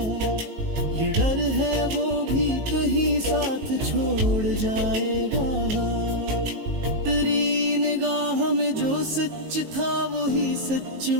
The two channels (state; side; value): late; left; 19 ms